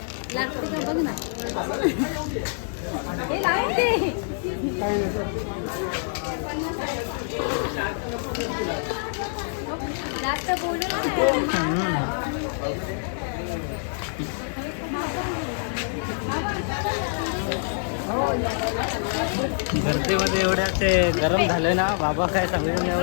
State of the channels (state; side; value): silent; right; digital silence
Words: लागते का बघ ना. हे लागते. जास्त बोलू ना. गर्दीमध्ये एवढ्या ते गरम झालं ना बाबा, काय सांगू